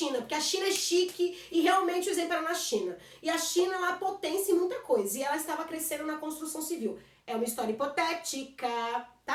porque a China é chique e realmente o exemplo era na China. E a China é uma potência em muita coisa, e ela estava crescendo na construção civil. É uma história hipotética,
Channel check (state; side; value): identical; both; correlation 1.00